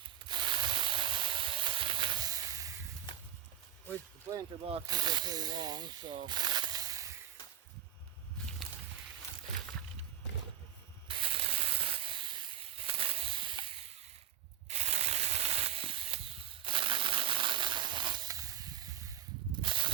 Which the planter boxes are pretty long, so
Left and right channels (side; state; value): left; quieter; 11.4 dB